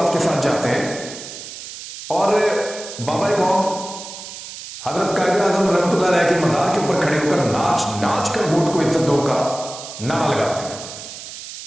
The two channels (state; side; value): noise; right; hiss, 12 dB below the sound